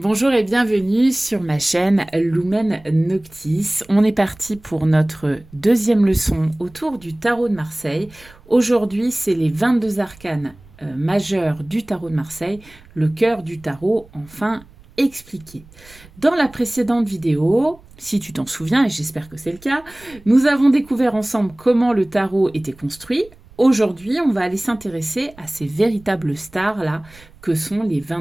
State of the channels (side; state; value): right; noise; rumble, 25 dB below the sound